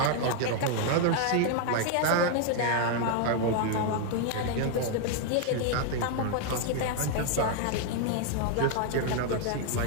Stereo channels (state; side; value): different; both; correlation 0.00